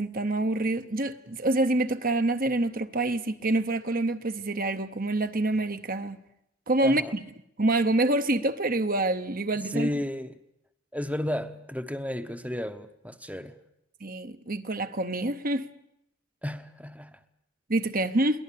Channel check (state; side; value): normal; both; correlation 0.50